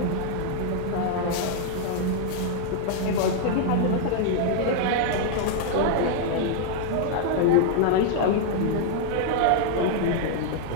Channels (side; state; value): both; different; correlation 0.00